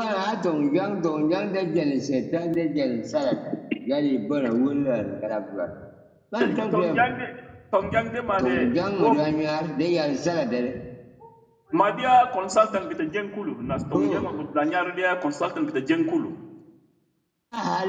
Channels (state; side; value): identical; both; correlation 1.00